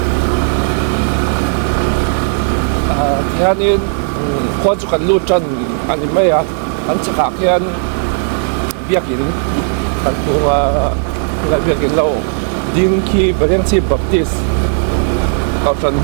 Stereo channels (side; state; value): left; silent; 63 dB below the other